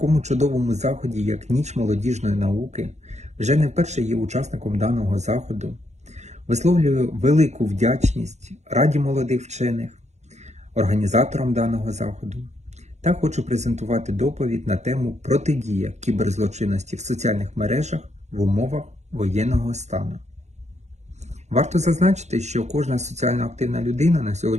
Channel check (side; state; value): left; late; 0.33 ms